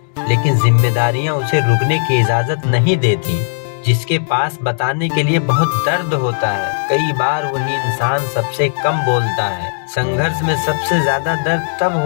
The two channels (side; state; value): right; silent; digital silence